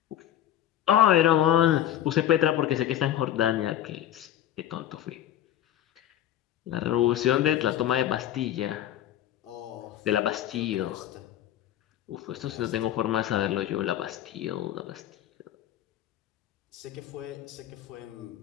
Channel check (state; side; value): quieter; right; 11.7 dB